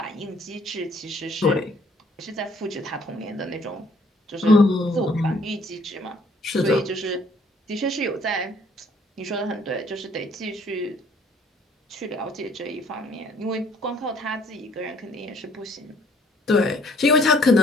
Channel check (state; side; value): normal; both; correlation 0.61